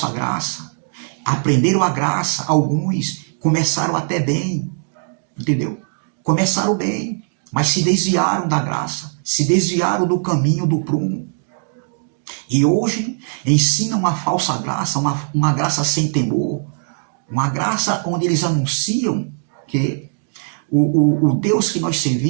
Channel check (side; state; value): left; silent; digital silence